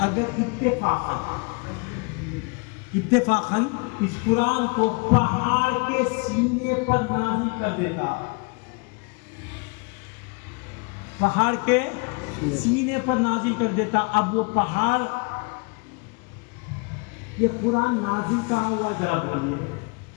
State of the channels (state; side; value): quieter; right; 32.5 dB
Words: اگر اتفاقاً اس قرآن کو پہاڑ کے سینے پر نازل کر دیتا، پہاڑ کے سینے پر نازل کر دیتا، اب وہ پہاڑ، یہ قرآن نازل کہاں ہوا ذرا بولیے،